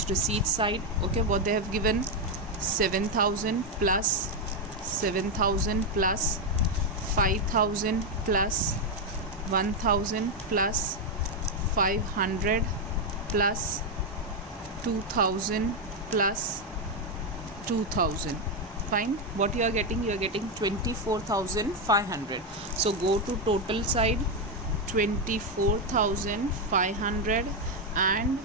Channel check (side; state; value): both; normal; correlation 0.04